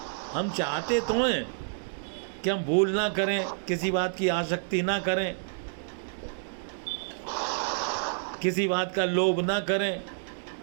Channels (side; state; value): left; silent; digital silence